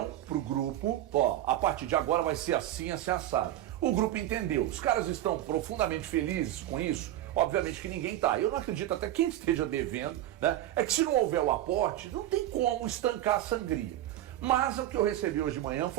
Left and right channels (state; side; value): quieter; left; 13.5 dB